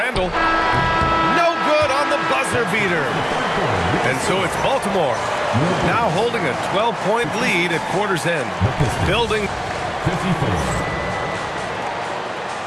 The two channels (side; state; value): both; identical; correlation 1.00